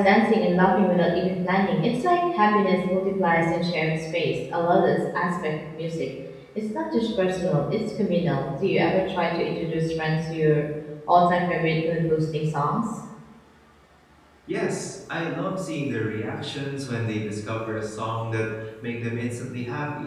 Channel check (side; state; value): both; identical; correlation 1.00